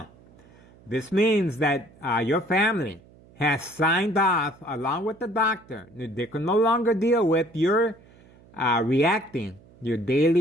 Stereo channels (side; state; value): right; noise; hum, 26 dB below the sound